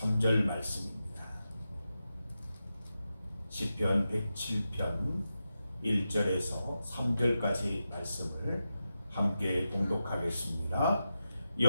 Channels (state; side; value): inverted; both; correlation -0.90